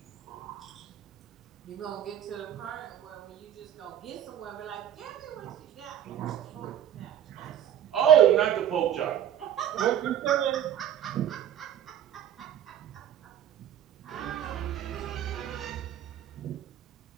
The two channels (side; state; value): left; quieter; 10.4 dB